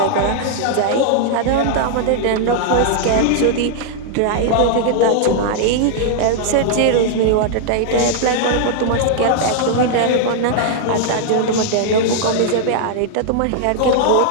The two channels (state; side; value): different; both; correlation -0.01